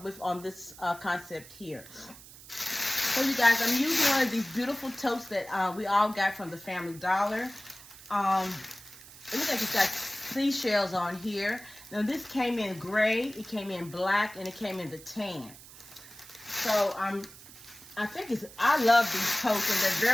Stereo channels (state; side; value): noise; right; hiss, 19 dB below the sound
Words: with on this concept here. So you guys, I'm using one of these beautiful totes that we all got from the Family Dollar. It looks like it's got seashells on here. Now this came in gray, it came in black, and it came in the tan. So I love these totes, and they're